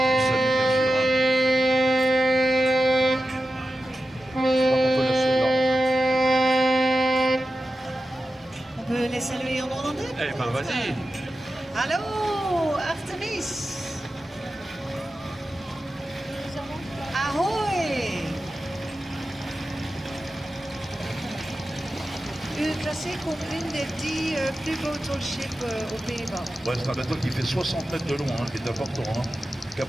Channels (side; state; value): both; normal; correlation 0.93